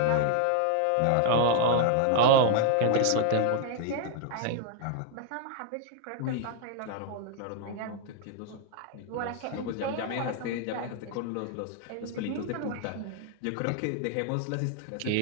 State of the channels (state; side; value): different; both; correlation 0.00